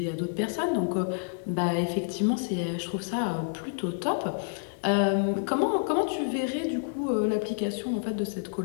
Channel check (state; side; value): silent; right; digital silence